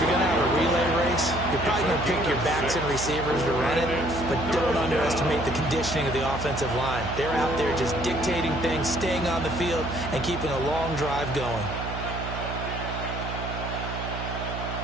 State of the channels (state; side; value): noise; right; hum, 6 dB below the sound